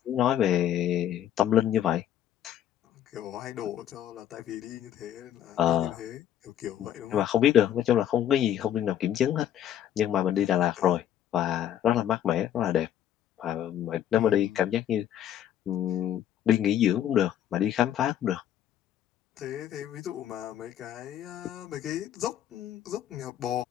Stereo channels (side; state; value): right; quieter; 10.8 dB